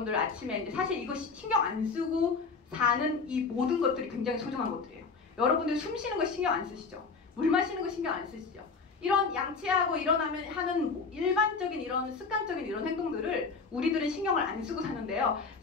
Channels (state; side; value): quieter; right; 4.7 dB